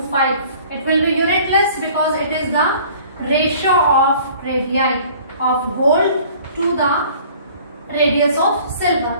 It will be unitless because it is the ratio of radii of gold to the radius of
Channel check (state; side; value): inverted; both; correlation -0.51